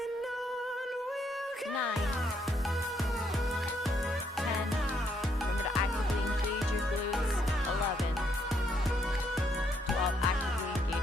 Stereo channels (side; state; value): both; normal; correlation 0.73